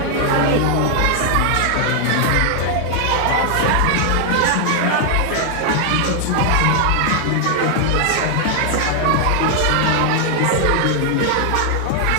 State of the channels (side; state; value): both; different; correlation 0.00